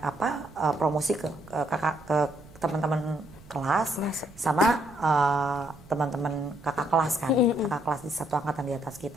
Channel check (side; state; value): right; noise; rumble, 22 dB below the sound